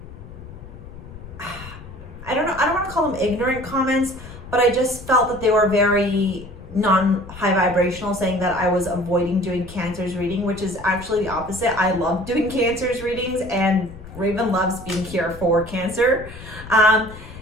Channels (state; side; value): noise; left; rumble, 15 dB below the sound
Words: I don't want to call them ignorant comments, but I just felt that they were very non-high vibrational, saying that I was avoiding doing Cancer's reading, which is actually the opposite. I love doing Cancer's readings, and Raven loves being here for Cancer.